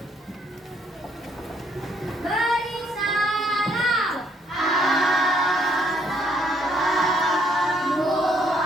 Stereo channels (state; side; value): normal; both; correlation 0.68